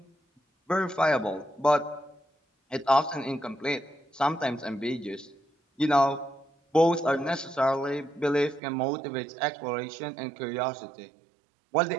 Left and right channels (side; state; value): left; drops out; at 8.6 s